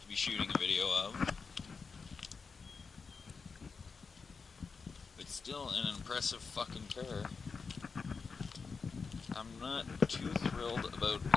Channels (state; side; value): quieter; right; 5.0 dB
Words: to be shooting a video of. But still an impressive fucking car. I'm not too thrilled about